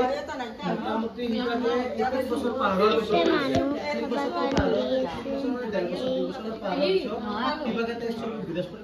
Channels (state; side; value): identical; both; correlation 1.00